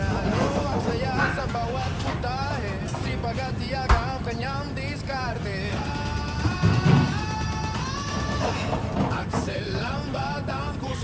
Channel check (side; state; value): both; identical; correlation 1.00